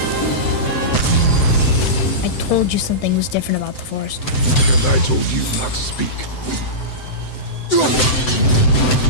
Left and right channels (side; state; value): right; late; 7.8 ms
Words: told you something was different about the forest. And I told you not to speak.